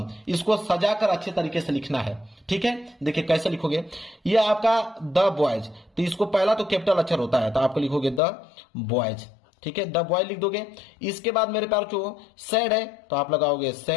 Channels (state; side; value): drops out; right; at 8.2 s